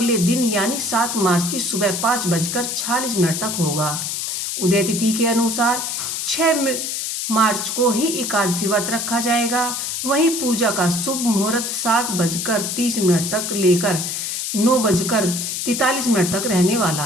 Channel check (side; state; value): left; noise; hiss, 3 dB below the sound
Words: दिन यानी 7 मार्च की सुबह 5:46 तक होगा। उदय तिथि के अनुसार 6 मार्च को ही एकादशी व्रत रखा जाएगा। वहीं पूजा का शुभ मुहूर्त 7:30 तक लेकर 9:43 तक रहने वाला